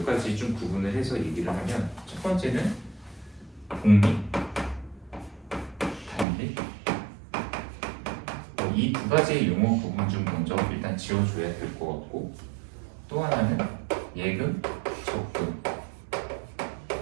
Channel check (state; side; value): drops out; left; at 6.2 s